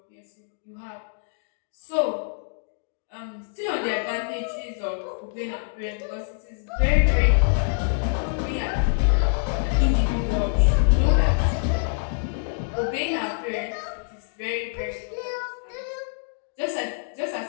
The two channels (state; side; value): silent; right; digital silence